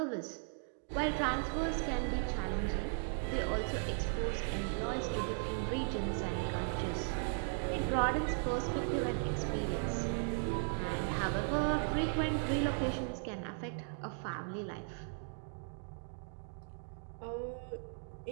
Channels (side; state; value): left; silent; 53 dB below the other